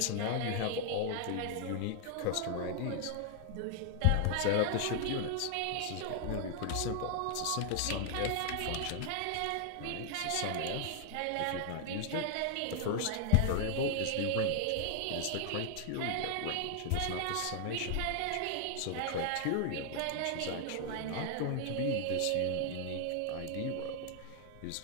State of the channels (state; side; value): different; both; correlation 0.00